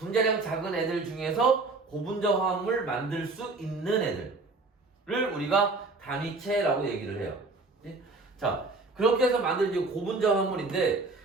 작은 애들 중에서 고분자 화합물 만들 수 있는 애들을 우리가 단위체라고 얘기를 해요. 자, 그렇게 해서 만든 이제 고분자 화합물인데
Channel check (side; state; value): left; quieter; 3.6 dB